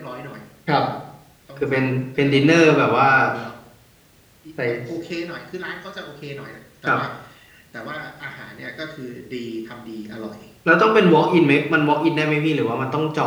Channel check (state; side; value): identical; both; correlation 1.00